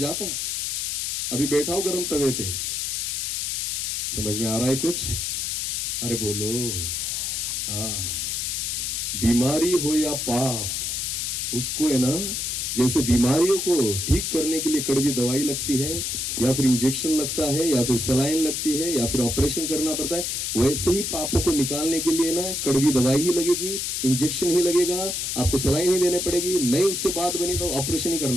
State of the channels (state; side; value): noise; left; hiss, 1 dB below the sound